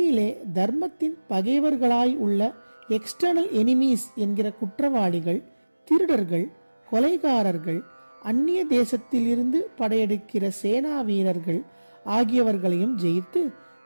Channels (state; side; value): inverted; both; correlation -1.00